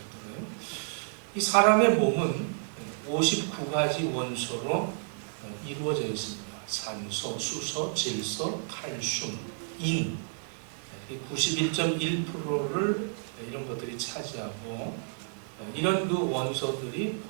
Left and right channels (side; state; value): left; silent; 57 dB below the other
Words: 이 사람의 몸은 59가지 원소로 이루어져 있습니다. 산소, 수소, 질소, 칼슘, 인 91.1%를 이런 것들이 차지하고 이런 그 원소들이